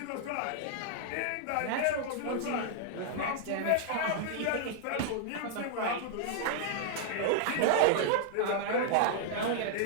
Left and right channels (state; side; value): different; both; correlation -0.01